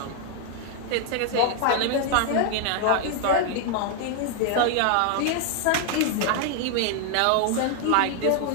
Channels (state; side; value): different; both; correlation 0.00